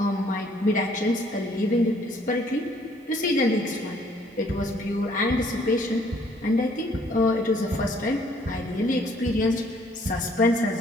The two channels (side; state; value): both; normal; correlation 0.62